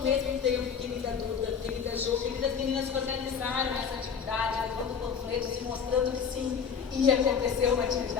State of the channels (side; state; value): right; quieter; 6.7 dB